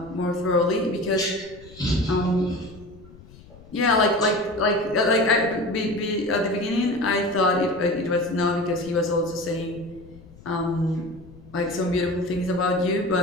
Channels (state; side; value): noise; left; rumble, 21 dB below the sound